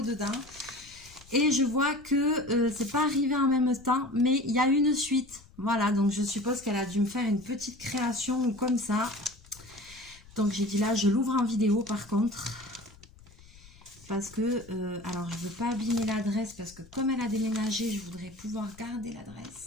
dedans. Et je vois que c'est pas arrivé en même temps, mais il y a une suite. Voilà, donc je suppose qu'elle a dû me faire une petite création ou comme ça. Donc j'ai dit là, je l'ouvre en vidéo par contre. Parce que, alors je veux pas abîmer l'adresse, parce que comme elle a déménagé, je voudrais pouvoir garder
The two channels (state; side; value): noise; left; rumble, 23 dB below the sound